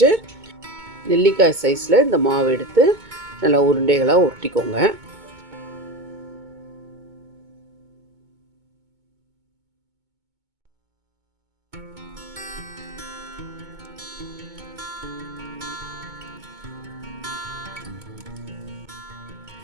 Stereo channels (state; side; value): late; left; 2.2 ms